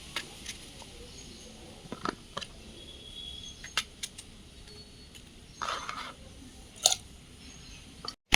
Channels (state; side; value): identical; both; correlation 1.00